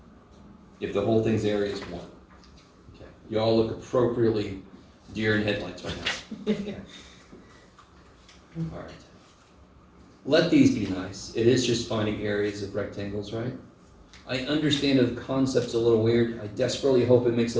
If the whole thing's area is 1. Okay. You all look appropriately deer in headlights right now. All right. Let these be nice. It is just finding areas of rectangles, right? I understand the concept's a little weird. I desperately hope it makes a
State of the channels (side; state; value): both; identical; correlation 1.00